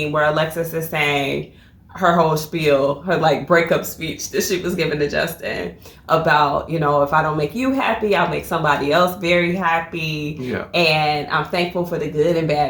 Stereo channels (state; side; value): identical; both; correlation 1.00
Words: where Alexis is saying her whole spiel, her like breakup speech that she was giving to Justin about, if I don't make you happy, I'll make somebody else very happy. Yeah. And I'm thankful for the good and